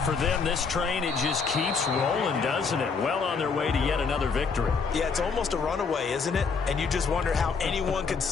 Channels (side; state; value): right; quieter; 5.2 dB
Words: for them, this train, it just keeps rolling, doesn't it? Well on their way to yet another victory. Yeah, it's almost a runaway, isn't it? And you just wonder how anyone could